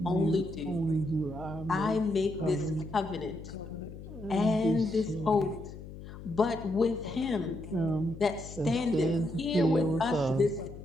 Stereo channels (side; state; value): left; noise; hum, 13 dB below the sound